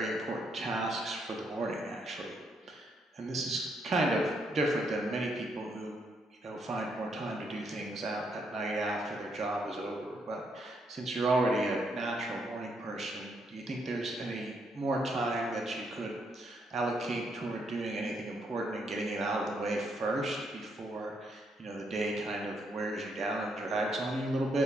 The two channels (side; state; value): both; normal; correlation 0.75